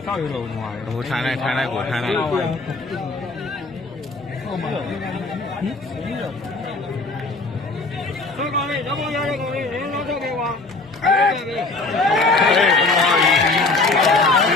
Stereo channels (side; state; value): right; quieter; 3.4 dB